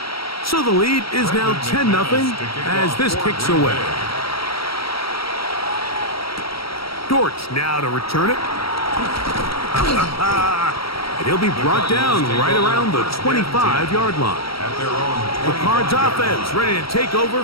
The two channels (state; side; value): late; right; 0.75 ms